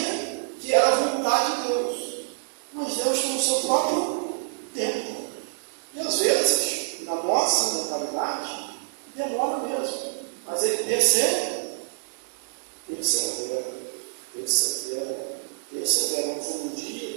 que era a vontade de Deus. Mas Deus tem o seu próprio tempo. E às vezes, na nossa mentalidade, demora mesmo. Mas ele persevera. Não foi um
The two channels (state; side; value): silent; left; digital silence